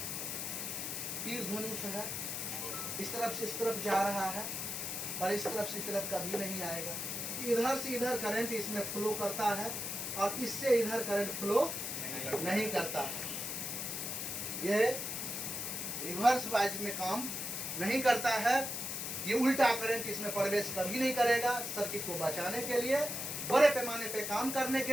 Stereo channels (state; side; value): noise; left; hiss, 3 dB below the sound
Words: तीर धनुष है, इस तरफ से इस तरफ जा रहा है और इस तरफ से इस तरफ कभी नहीं आएगा। इधर से इधर करंट इसमें फ्लो करता है और इससे इधर करंट फ्लो नहीं करता है। ये रिवर्स वाइज में काम नहीं करता है। ये उल्टा करंट इसमें प्रवेश कभी नहीं करेगा। सर्किट को बचाने के लिए, बड़े पैमाने पे काम करने